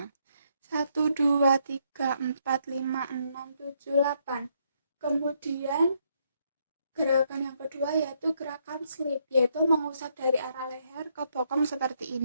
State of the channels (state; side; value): inverted; both; correlation -0.74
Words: 1, 2, 3, 4, 5, 6, 7, 8. Kemudian gerakan yang kedua yaitu gerakan slip, yaitu mengusap dari arah leher ke bokong seperti